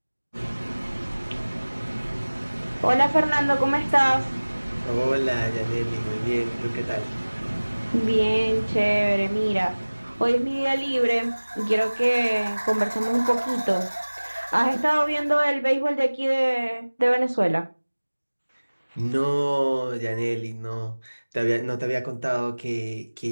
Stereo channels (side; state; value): both; inverted; correlation -1.00